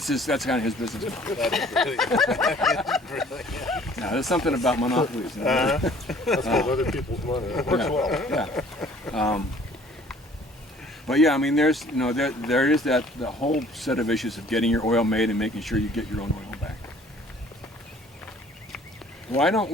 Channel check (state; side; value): normal; both; correlation 0.54